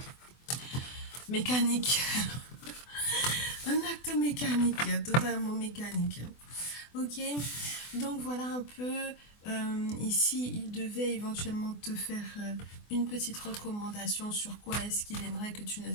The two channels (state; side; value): late; right; 24 ms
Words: mécanique. Un acte mécanique, totalement mécanique. Ok, donc voilà un peu. Ici, il devait éventuellement te faire une petite recommandation sur quoi est-ce qu'il aimerait que tu ne